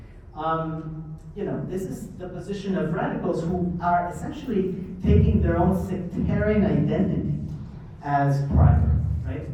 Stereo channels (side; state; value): both; identical; correlation 1.00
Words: This is the position of radicals who are essentially taking their own sectarian identity as primary, right?